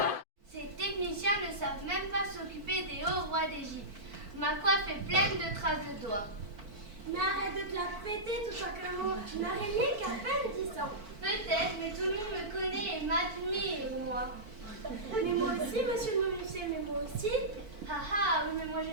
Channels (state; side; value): late; left; 4.5 ms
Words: Ces techniciens ne savent même pas s'occuper des hauts rois d'Égypte. Ma coiffe est pleine de traces de doigts. Mais arrête de te la péter tout simplement. Tu n'as rien qu'à peine 10 ans. Peut-être, mais tout le monde me connaît et m'admire, moi. Mais moi aussi, monsieur le menuisier, mais moi aussi. Ah ah, oui, mais moi je